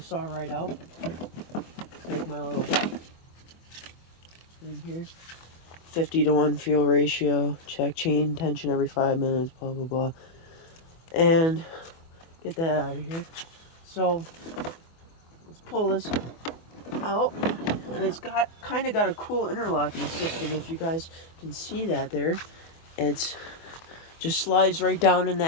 saw right out. Take my little thing here. 50-to-1 fuel ratio, check chain tension every 5 minutes, blah blah blah, and get that out of here. So let's pull this out, and it's got kind of got a cool interlocking system. If you guys can see that there, it's just slides right down in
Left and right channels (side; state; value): right; late; 24 ms